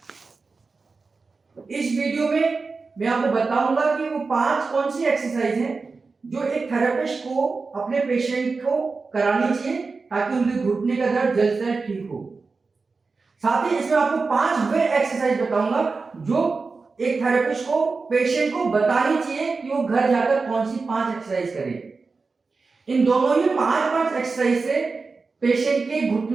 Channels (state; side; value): quieter; left; 4.3 dB